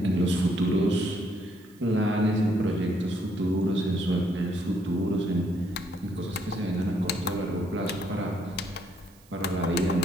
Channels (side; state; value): right; noise; hiss, 28 dB below the sound